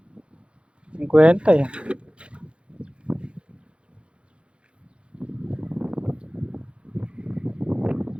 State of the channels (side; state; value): left; late; 0.058 ms